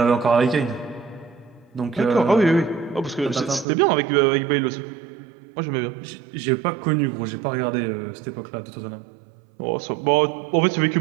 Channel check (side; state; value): left; drops out; at 3.7 s